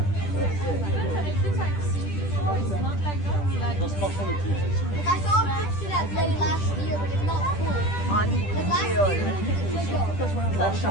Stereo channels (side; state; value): right; late; 10 ms